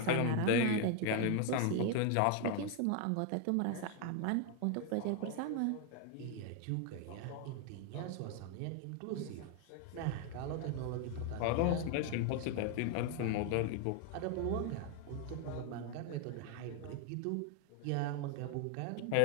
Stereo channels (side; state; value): both; different; correlation 0.00